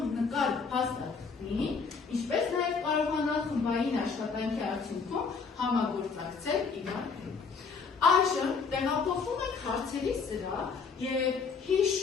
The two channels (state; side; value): quieter; right; 5.2 dB